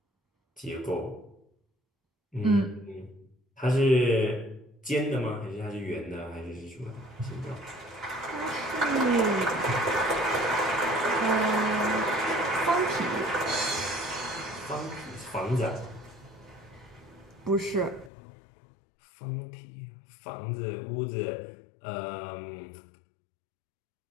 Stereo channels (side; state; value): right; drops out; at 18.1 s